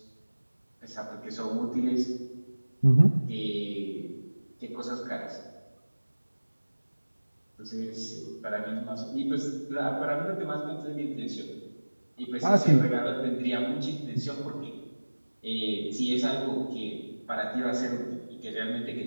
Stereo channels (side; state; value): both; inverted; correlation -1.00